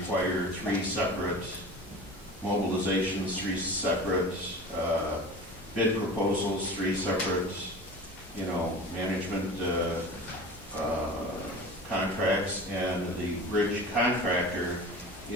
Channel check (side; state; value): both; normal; correlation 0.35